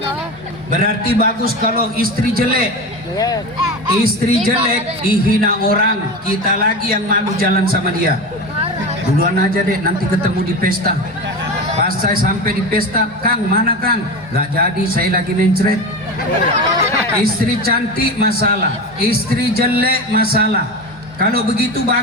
Berarti bagus kalau istri jelek. Istri jelek dihina orang, kita lagi yang malu jalan sama dia. Duluan aja deh, nanti ketemu di pesta. Pas saya sampai di pesta, Kang mana Kang? Gak jadi, saya lagi mencret. Istri cantik masalah, istri jelek masalah. Kalau begitu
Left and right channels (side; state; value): both; normal; correlation 0.25